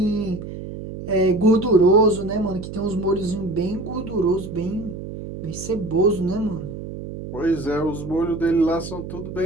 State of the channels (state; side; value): noise; right; hum, 10 dB below the sound